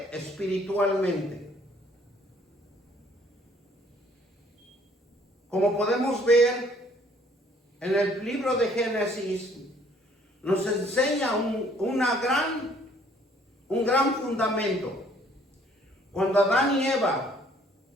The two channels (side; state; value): both; normal; correlation 0.60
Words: espiritualmente. Como podemos ver en el libro de Génesis, nos enseña un gran fundamento. Cuando Adán y Eva